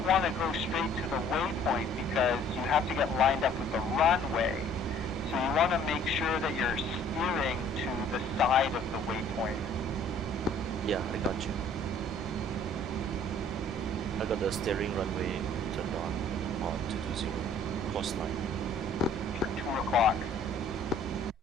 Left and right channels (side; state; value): both; normal; correlation 0.55